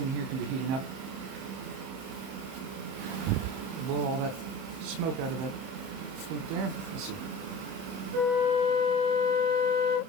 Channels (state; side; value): late; left; 31 ms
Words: here can be heating up. Blow all that smoke out of that flute there. Let's see.